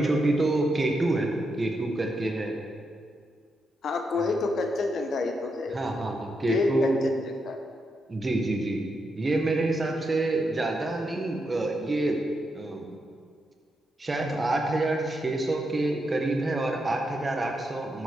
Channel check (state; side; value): normal; both; correlation 0.83